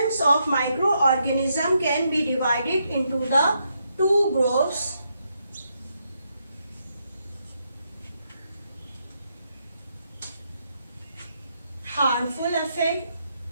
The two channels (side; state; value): both; inverted; correlation -0.79